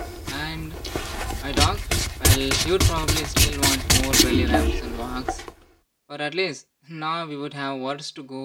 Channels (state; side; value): identical; both; correlation 1.00